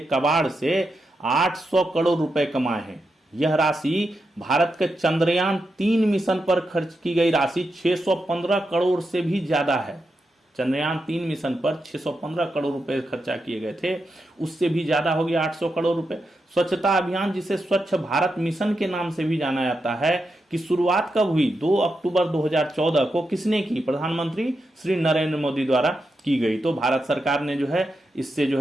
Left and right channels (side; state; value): both; normal; correlation 0.86